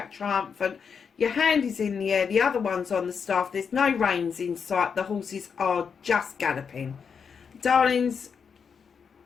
triumphant. Your hand is in the air, the other one's on the staff. There's no reins in sight. The horses are just galloping. Darlings,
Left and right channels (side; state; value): right; quieter; 6.3 dB